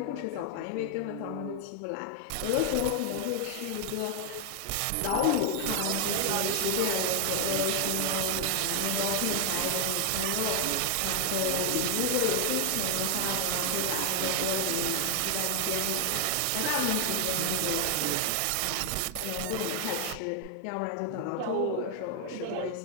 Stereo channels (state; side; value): different; both; correlation 0.00